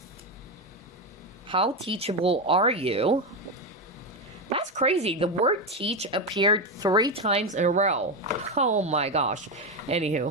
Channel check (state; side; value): normal; both; correlation 0.11